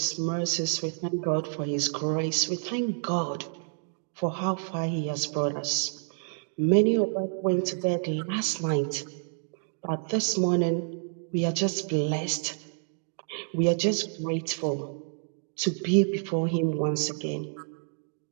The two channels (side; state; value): left; silent; digital silence